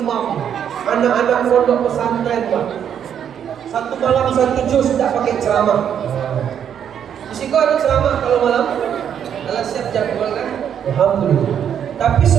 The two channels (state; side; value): quieter; left; 8.8 dB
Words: anak-anak pondok pesantren, Pak. Satu malam satu juz tidak pakai ceramah. Di situ ada ceramah kalau malam. Alah siap jadwal kan? Alhamdulillah. Tapi